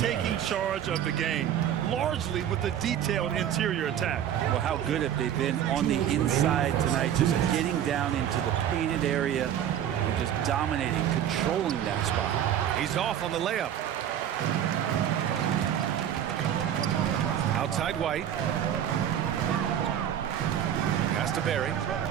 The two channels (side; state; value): left; quieter; 10.1 dB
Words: charge of the game, largely with the detailed interior attack. Well, how good have they been on the inside tonight, just getting down into the painted area and just dominating, controlling that spot. He's off on the layup. Outside White. Pass to Barry.